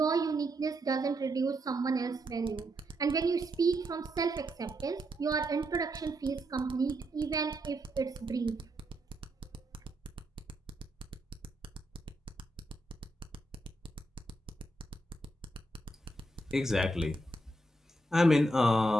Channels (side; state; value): both; normal; correlation 0.80